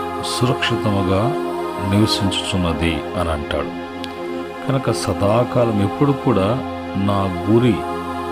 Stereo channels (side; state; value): both; identical; correlation 1.00